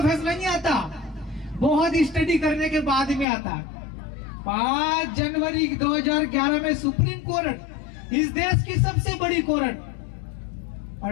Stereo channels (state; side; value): drops out; right; at 3.2 s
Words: फैसला नहीं आता, बहुत स्टडी करने के बाद में आता। 5 जनवरी 2011 में सुप्रीम कोर्ट, इस देश की सबसे बड़ी कोर्ट,